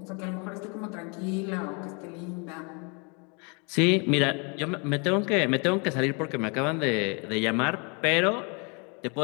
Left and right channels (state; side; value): quieter; right; 33.3 dB